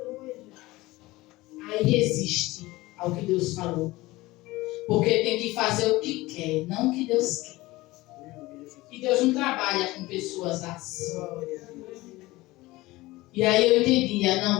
Aí resiste ao que Deus falou. Porque tem que fazer o que quer, não o que Deus quer. E Deus não trabalha com pessoas assim. E aí eu entendia, não,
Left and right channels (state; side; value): quieter; right; 19.6 dB